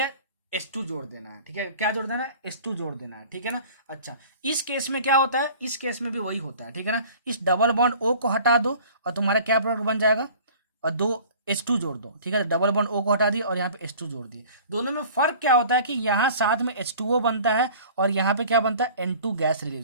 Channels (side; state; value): both; inverted; correlation -0.46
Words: H2 जोड़ देना है, ठीक है। क्या जोड़ देना है, H2 जोड़ देना है, ठीक है ना। अच्छा, इस केस में क्या होता है, इस केस में भी वही होता है, ठीक है ना। इस डबल बॉन्ड O को हटा दो और तुम्हारा क्या प्रोडक्ट बन जाएगा, और दो H2 जोड़ दो, ठीक है। डबल बॉन्ड O को हटा दिए और यहाँ पे H2 जोड़ दिए। दोनों में फर्क क्या होता है कि यहाँ साथ में H2O बनता है और यहाँ पे क्या बनता है, N2 गैस